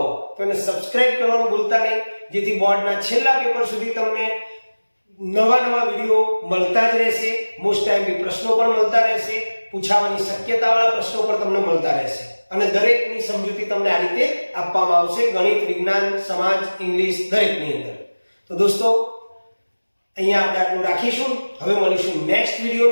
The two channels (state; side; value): inverted; both; correlation -1.00